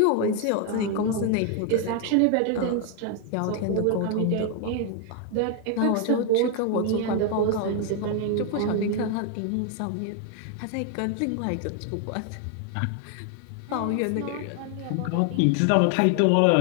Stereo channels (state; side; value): different; both; correlation 0.00